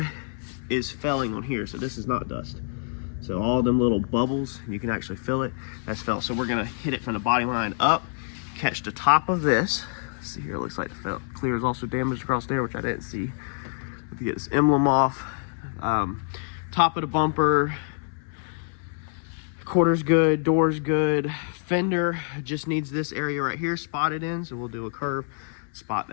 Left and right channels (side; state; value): right; silent; 61 dB below the other